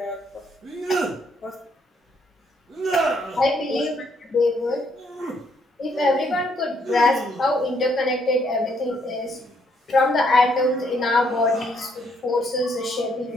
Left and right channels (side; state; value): both; normal; correlation 0.71